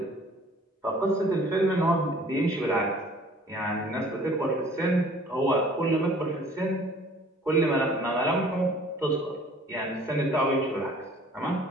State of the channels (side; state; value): both; normal; correlation 0.52